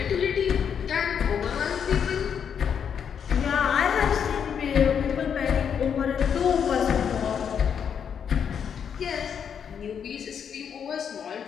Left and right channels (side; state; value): right; quieter; 7.6 dB